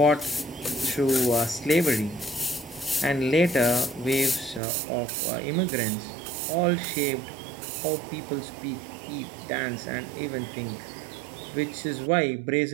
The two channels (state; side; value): drops out; left; at 4.6 s